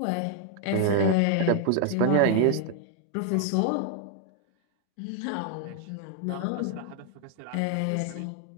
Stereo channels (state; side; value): different; both; correlation 0.00